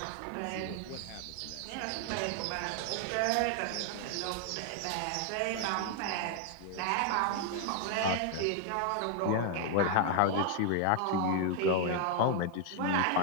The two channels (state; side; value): different; both; correlation 0.00